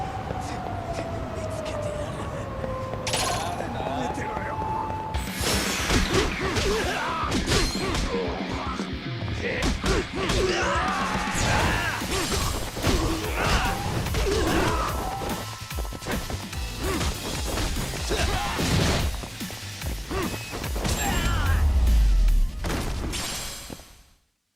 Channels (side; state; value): both; identical; correlation 1.00